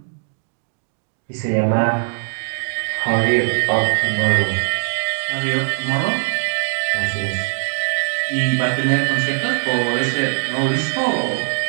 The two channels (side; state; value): left; silent; digital silence